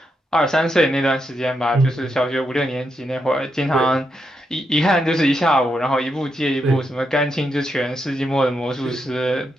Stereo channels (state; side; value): normal; both; correlation 0.82